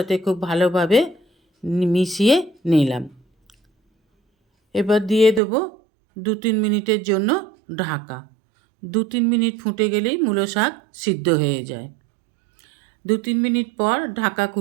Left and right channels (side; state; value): left; drops out; at 5.4 s